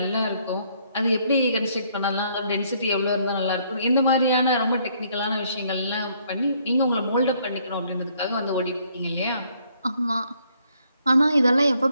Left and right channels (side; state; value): both; inverted; correlation -0.67